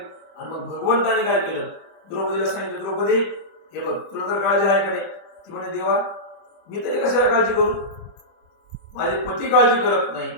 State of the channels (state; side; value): late; right; 25 ms